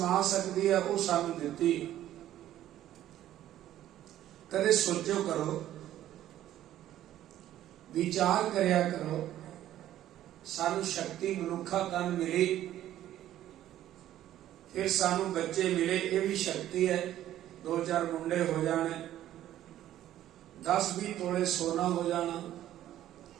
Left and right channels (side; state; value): left; quieter; 12.7 dB